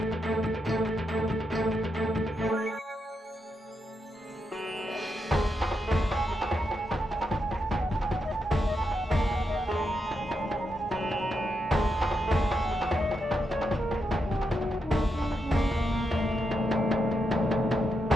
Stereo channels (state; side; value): normal; both; correlation 0.84